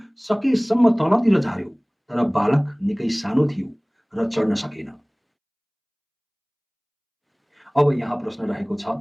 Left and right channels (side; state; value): both; identical; correlation 1.00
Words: सकेसम्म तलतिर झार्यो, तर बालक निकै सानो थियो र चढ्न सकेन। अब यहाँ प्रश्न रहेको छ,